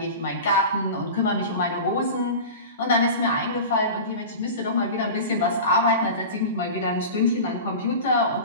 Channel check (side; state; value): both; inverted; correlation -0.31